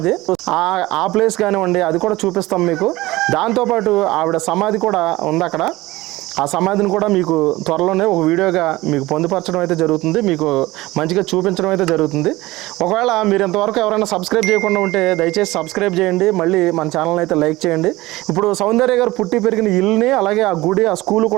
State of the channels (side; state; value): left; quieter; 19.1 dB